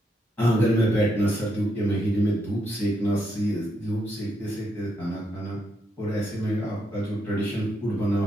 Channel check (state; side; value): normal; both; correlation 0.79